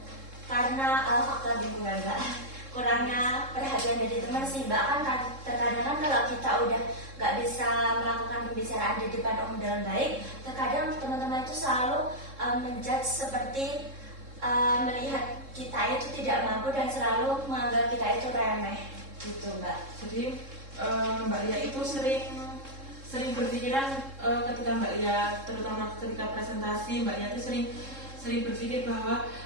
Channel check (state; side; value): late; left; 3.7 ms